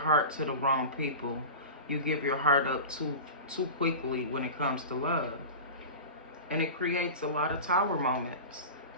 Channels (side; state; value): both; inverted; correlation -0.30